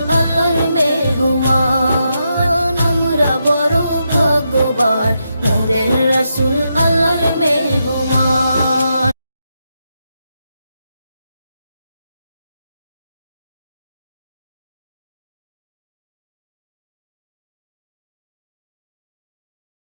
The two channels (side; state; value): both; inverted; correlation -0.83